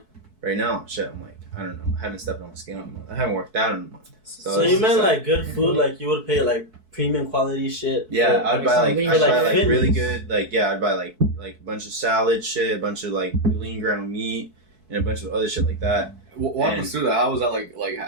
right now shit I'm like I don't know I haven't stepped on the scale in a month. I haven't worked out in a month. So it's you just meant like good food, like you would pay like premium quality shit. yeah, for- I'd buy like something I'd like buy like fitness. really good like yeah I'd buy like a bunch of salad shit, a bunch of like lean ground meat, and a bunch of other shit like that. Walk And- us through that. How was that like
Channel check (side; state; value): left; late; 4.6 ms